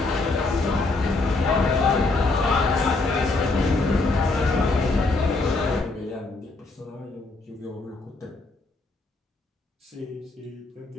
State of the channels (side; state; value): right; quieter; 3.4 dB